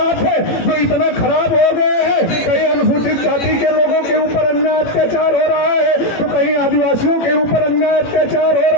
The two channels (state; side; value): late; right; 18 ms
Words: है जो इतना खराब हो गए हैं, कहीं अनुसूचित जाति के लोगों के ऊपर अन्याय अत्याचार हो रहा है, तो कहीं आदिवासियों के ऊपर अन्याय अत्याचार हो